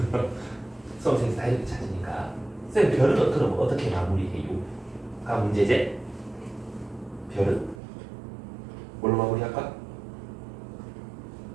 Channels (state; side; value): drops out; left; at 7.8 s